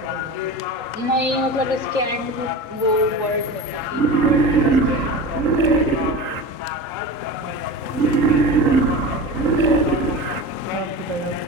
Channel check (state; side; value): late; right; 3.8 ms